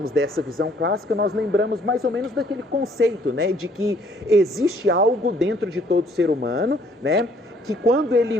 dessa visão clássica, nós lembramos mais ou menos daquele conceito, né? De que existe algo dentro de todo ser humano, né? Que quando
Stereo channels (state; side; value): normal; both; correlation 0.62